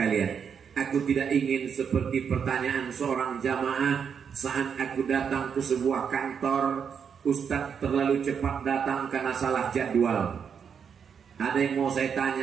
Aku tidak ingin seperti pertanyaan seorang jamaah saat aku datang ke sebuah kantor, Ustadz terlalu cepat datang karena salah jadwal. Ada yang mau saya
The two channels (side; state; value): left; quieter; 7.0 dB